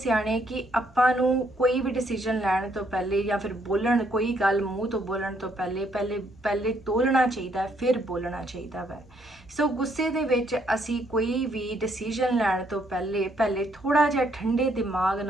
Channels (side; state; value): both; normal; correlation 0.70